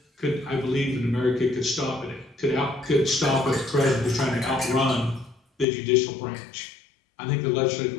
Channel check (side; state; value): right; drops out; at 5.7 s